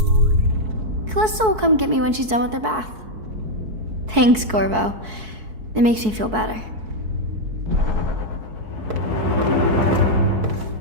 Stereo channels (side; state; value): left; late; 4.6 ms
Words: Callista will come get me when she's done with her bath. Thanks, Corvo. It makes me feel better.